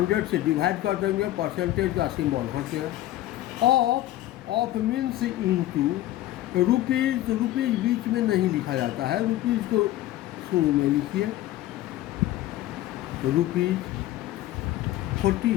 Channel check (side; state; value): right; quieter; 14.7 dB